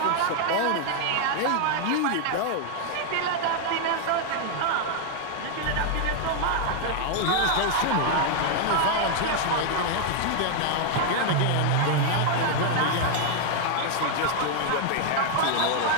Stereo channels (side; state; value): both; different; correlation 0.00